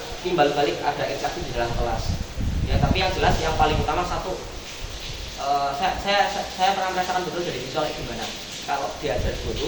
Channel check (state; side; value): noise; left; hiss, 28 dB below the sound